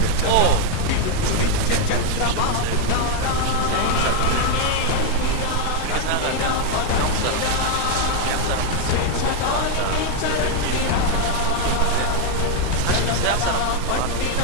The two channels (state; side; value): different; both; correlation 0.00